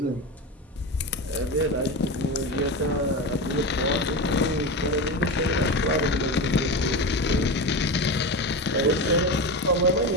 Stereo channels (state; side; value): normal; both; correlation 0.21